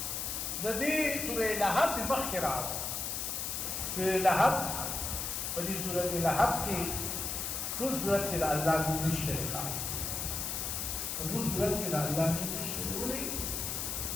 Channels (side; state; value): left; noise; hiss, 2 dB below the sound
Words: د دې سورې لهب په مخکې راغله. سورې لهب په دې سورې لهب کې ټول سورت کې د الله نوم نشته ښه. په ټول سورت کې د الله نوم نشته. ولې؟